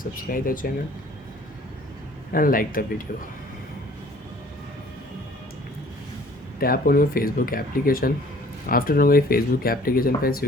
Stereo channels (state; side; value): normal; both; correlation 0.54